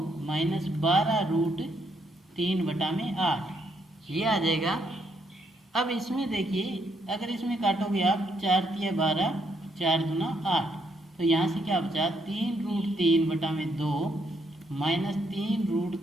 माइनस 12 √3/8, ये आ जाएगा। अब इसमें देखिए, अगर इसमें काटोगे आप 4 × 12, 4 दूना 8, तो यहाँ से क्या बचा 3 √3/2 माइनस 3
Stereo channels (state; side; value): normal; both; correlation 0.74